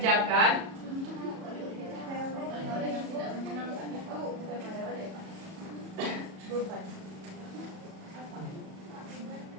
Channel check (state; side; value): late; left; 37 ms